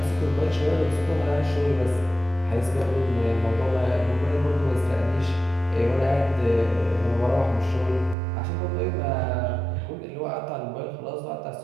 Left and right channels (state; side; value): drops out; left; at 8.2 s